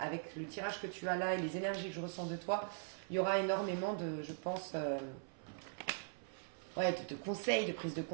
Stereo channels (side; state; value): left; silent; 50 dB below the other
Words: le tirage que tu as là et les énergies que je ressens de toi, il y aura énormément de, je pense, de conseils, de prise de